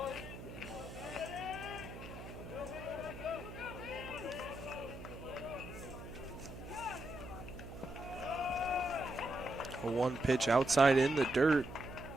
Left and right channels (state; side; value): noise; right; hum, 12 dB below the sound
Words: A 1 pitch outside in the dirt.